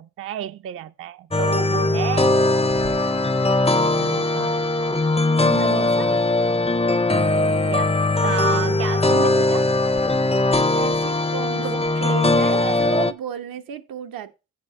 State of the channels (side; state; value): both; normal; correlation 0.54